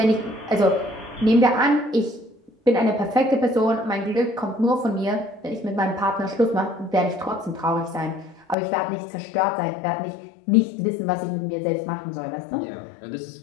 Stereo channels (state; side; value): drops out; right; at 8.6 s